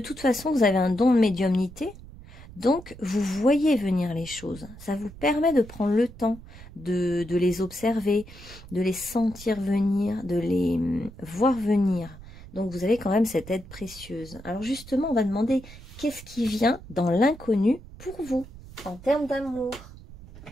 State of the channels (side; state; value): right; noise; rumble, 17 dB below the sound